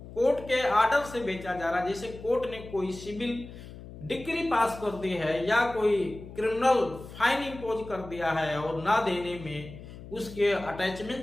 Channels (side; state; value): left; noise; hum, 15 dB below the sound